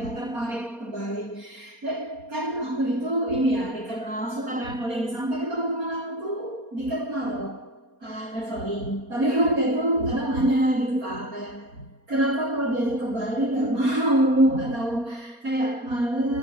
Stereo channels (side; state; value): left; late; 4.3 ms